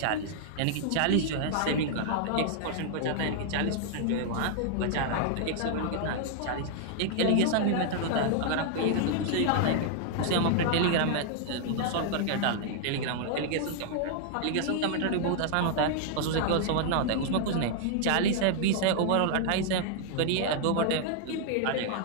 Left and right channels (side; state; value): both; different; correlation 0.00